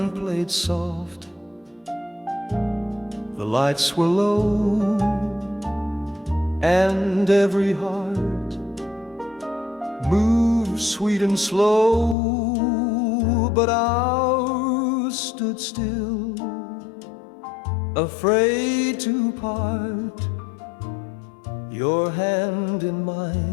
played soft, the lights were low, and every heart moved sweet and slow. But ours stood still, afraid to part. Your hand in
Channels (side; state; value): right; drops out; at 12.2 s